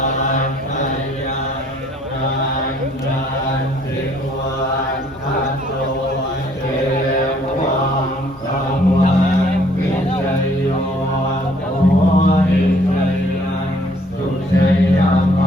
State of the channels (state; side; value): normal; both; correlation 0.62